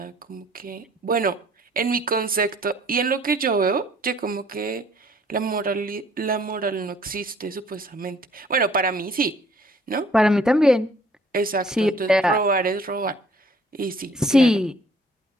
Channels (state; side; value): normal; both; correlation 0.58